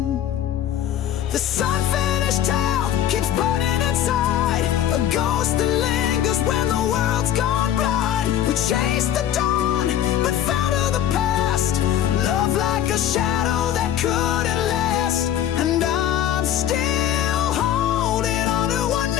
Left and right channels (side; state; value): right; quieter; 10.9 dB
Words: This unfinished tale keeps burning inside, a ghost that lingers when the world's gone blind. We chased the dawn, but fell to the past, love like a shadow that couldn't last. And I'm still holding on to what